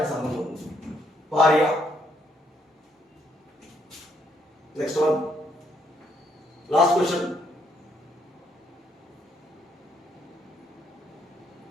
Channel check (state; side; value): normal; both; correlation 0.72